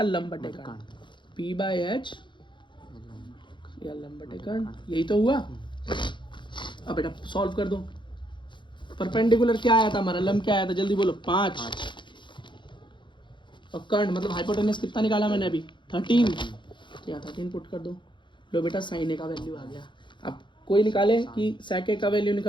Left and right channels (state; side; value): late; right; 0.23 ms